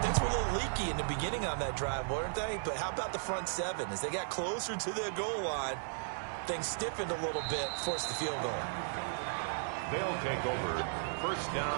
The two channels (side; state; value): left; silent; digital silence